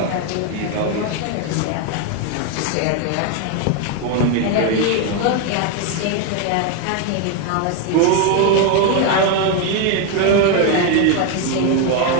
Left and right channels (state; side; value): different; both; correlation 0.01